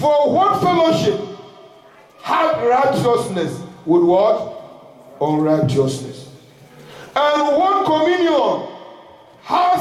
what fellowship hath righteousness with what? Unrighteousness. And what communion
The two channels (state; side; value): identical; both; correlation 1.00